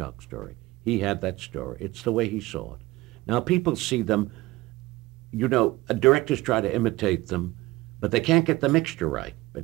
story. He had that story. It's the way he saw it. Now, people see them, you know, directors try to imitate them, but they can't get the mixture right,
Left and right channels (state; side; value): quieter; left; 19.6 dB